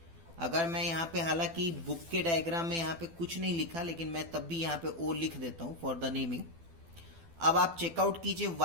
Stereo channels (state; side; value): late; left; 12 ms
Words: अगर मैं यहाँ पे, हालांकि बुक के डायग्राम में यहाँ पे कुछ नहीं लिखा, लेकिन मैं तब भी यहाँ पे ओ लिख देता हूँ फॉर द नेमिंग। अब आप चेकआउट कीजिए